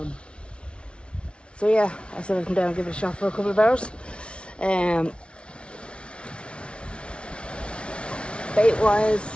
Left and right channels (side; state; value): right; late; 0.058 ms